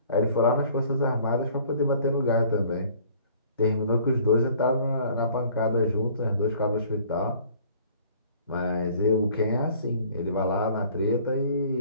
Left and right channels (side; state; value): both; inverted; correlation -0.54